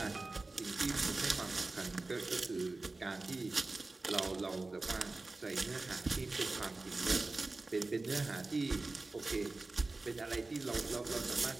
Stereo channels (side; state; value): left; quieter; 3.3 dB